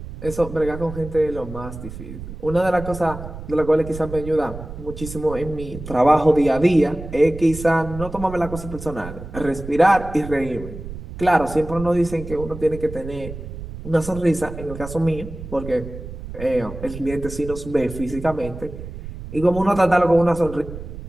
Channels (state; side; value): noise; right; rumble, 11 dB below the sound